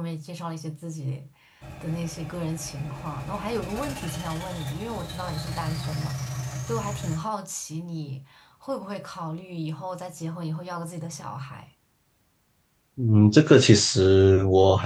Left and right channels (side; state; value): both; identical; correlation 1.00